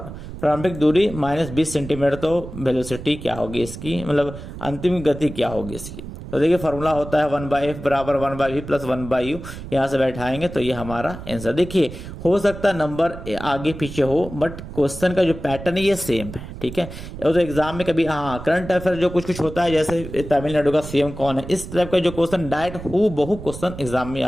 प्रारंभिक दूरी -20 सेंटीमीटर। तो वेलोसिटी क्या होगी इसकी, मतलब अंतिम गति क्या होगी इसकी? तो देखिए फॉर्मूला होता है 1/f बराबर 1/v प्लस 1/u, यहाँ से बैठाएंगे तो ये हमारा आंसर। देखिए हो सकता है नंबर आगे पीछे हो, बट क्वेश्चन का जो पैटर्न है ये सेम है, ठीक है। और तो एग्जाम में कभी हाँ करंट अफेयर जो कुछ कुछ होता है, जैसे तमिलनाडु का सीएम कौन है, इस टाइप का जो क्वेश्चन डायरेक्ट हूबहू क्वेश्चन एग्जाम में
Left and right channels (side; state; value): right; noise; rumble, 11 dB below the sound